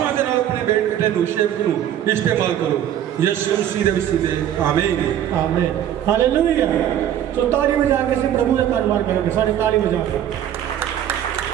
दे नाल अपने बेटे नूं सेवक नूं इस्तेमाल करो। यीशु मसीह दे वसीले आमीन आमीन हालेलुया। तो ताली बजा के से प्रभु का धन्यवाद करेंगे। सारे ताली बजा के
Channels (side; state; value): left; quieter; 10.8 dB